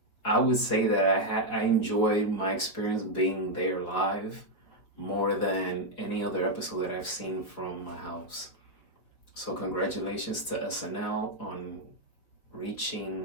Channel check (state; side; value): late; right; 5.0 ms